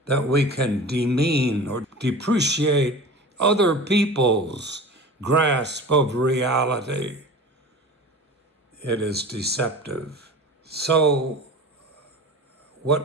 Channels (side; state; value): both; normal; correlation 0.37